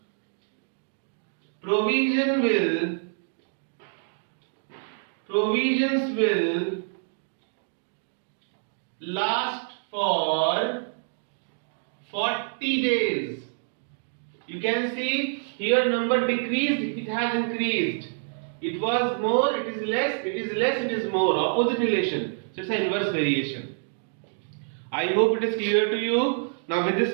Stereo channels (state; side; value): silent; left; digital silence